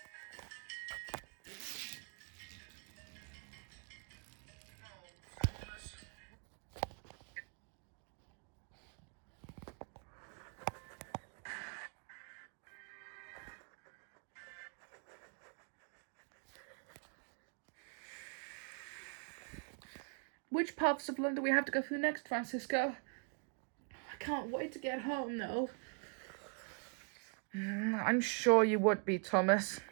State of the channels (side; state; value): left; quieter; 39.8 dB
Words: Which parts of London do we have to go through next, Fransisco? I can't wait to get home, though. I'm sure you would be, Thomas.